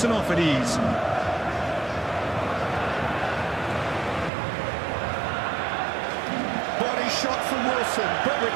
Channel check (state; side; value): drops out; left; at 4.3 s